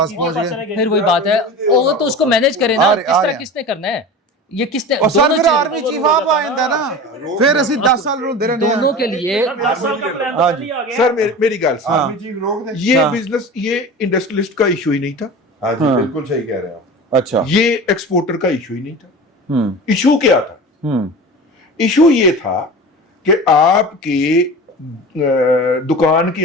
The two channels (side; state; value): both; normal; correlation 0.33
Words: पहुंच गए। फिर वही बात है, वो तो उसको मैनेज करे ना, आ रहे- किस आ तरह रहे- किसने करना है? یہ کس نے اور سر دونوں پھر چیزیں- آرمی چیف آپ آئندہ نا پھر اسی 10 سال رو دے رہے دونوں کے لیے 10 سال کا پلان ہاں تو جی۔ نہیں آ گیا سر میری گل ہاں۔ سن، یہ بزنس یہ انڈسٹریلسٹ کا ایشو ہی نہیں تھا، ہاں جی بالکل صحیح کہہ رہے ہیں آپ. اچھا یہ ایکسپورٹر کا ایشو ہی نہیں تھا. ہوں ایشو کیا تھا؟ ایشو یہ تھا کہ آپ کے دکان